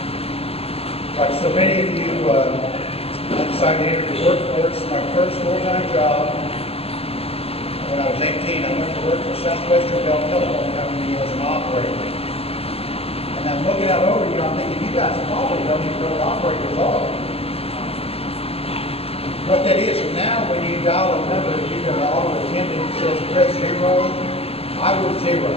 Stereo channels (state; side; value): late; right; 0.29 ms